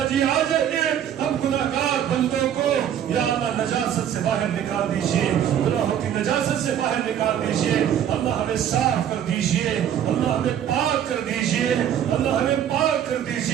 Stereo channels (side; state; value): left; quieter; 9.8 dB